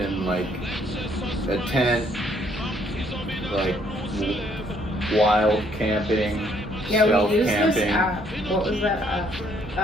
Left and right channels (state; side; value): normal; both; correlation 0.67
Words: like a tent, like wild camping, Yeah, stealth we used camping. this app. What was that app?